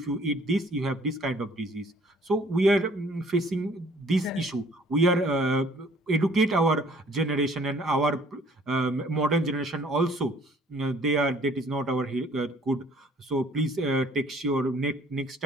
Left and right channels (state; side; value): normal; both; correlation 0.57